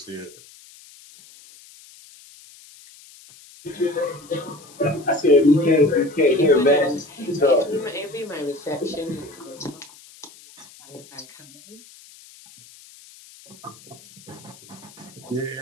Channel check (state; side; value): noise; left; hiss, 22 dB below the sound